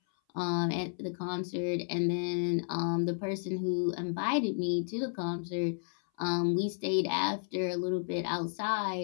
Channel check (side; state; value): right; silent; 56 dB below the other